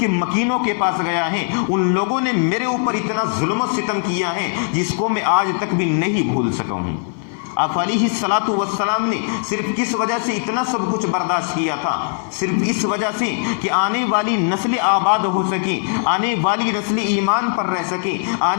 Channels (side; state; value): right; silent; 60 dB below the other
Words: مکینوں کے پاس گیا ہے، ان لوگوں نے میرے اوپر اتنا ظلم و ستم کیا ہے جس کو میں آج تک بھی نہیں بھول سکا ہوں۔ آپ علیہ الصلوۃ والسلام نے صرف کس وجہ سے اتنا سب کچھ برداشت کیا تھا؟ صرف اس وجہ سے کہ آنے والی نسل آباد ہو سکے، آنے والی نسل ایمان پر رہ سکے،